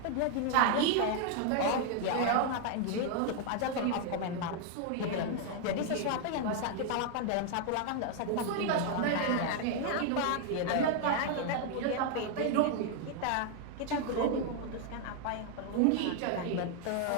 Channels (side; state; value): both; different; correlation 0.00